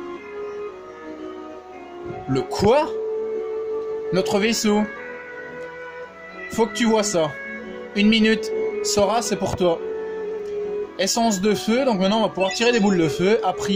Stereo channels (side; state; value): both; identical; correlation 1.00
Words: Le quoi? Notre vaisseau. Faut que tu vois ça. 1 minute. Sora, c'est pour toi. Essence de feu. Donc maintenant, on va pouvoir tirer des boules de feu. À